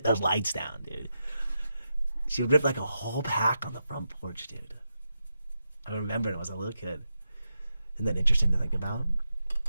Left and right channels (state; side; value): inverted; both; correlation -0.87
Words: those lights down, dude. She would rip, like, a whole pack on the front porch, dude. I remember it when I was a little kid. Isn't that interesting to think about?